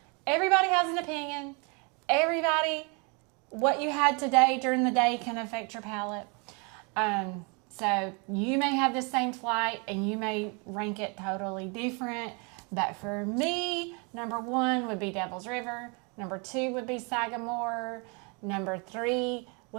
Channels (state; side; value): quieter; left; 33.0 dB